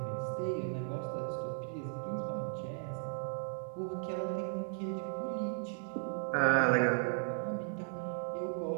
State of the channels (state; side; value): silent; left; 54 dB below the other